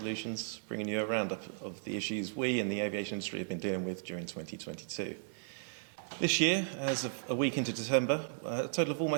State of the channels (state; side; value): silent; left; digital silence